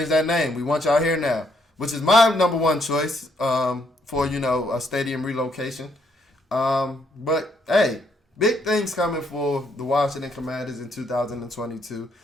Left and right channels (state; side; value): normal; both; correlation 0.72